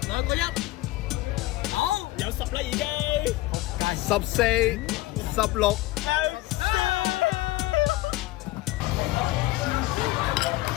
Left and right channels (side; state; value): right; quieter; 18.3 dB